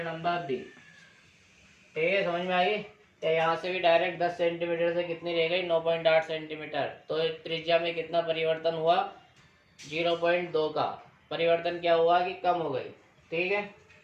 नंबर बी। ठीक है, समझ में आई। तो यहाँ से भी डायरेक्ट 10 सेंटीमीटर से कितनी रह गई 9.8 सेंटीमीटर, तो त्रिज्या में कितना परिवर्तन हुआ 0.2 का परिवर्तन क्या हुआ कि कम हो गई। ठीक है,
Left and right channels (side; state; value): both; identical; correlation 1.00